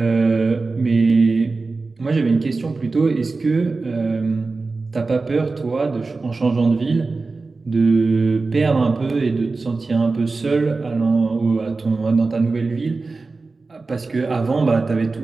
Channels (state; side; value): quieter; left; 3.8 dB